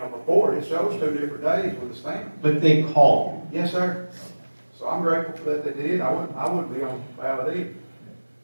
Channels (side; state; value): both; inverted; correlation -1.00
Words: before it shows 2 different days with a stamp. But they called you. Yes, sir. So I'm grateful for that they did. I wouldn't be on the ballot either.